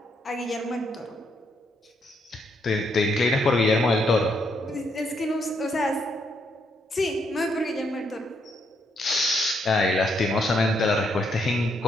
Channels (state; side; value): normal; both; correlation 0.75